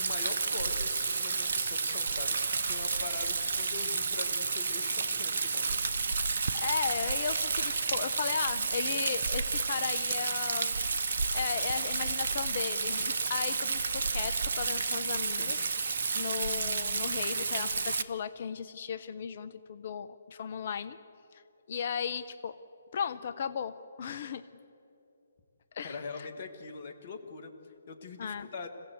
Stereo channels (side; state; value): both; inverted; correlation -0.78